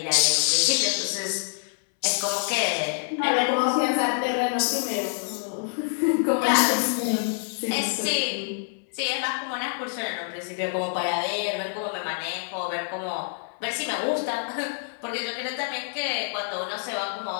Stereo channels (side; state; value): right; silent; 61 dB below the other